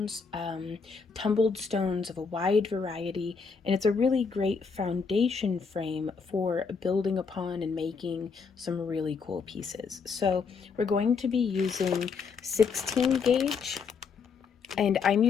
tumbled stones of a wide variety, and it's a really great foundation frame for building upon and making some really cool pieces. So we're going to be using 16 gauge, and I'm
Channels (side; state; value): right; quieter; 5.4 dB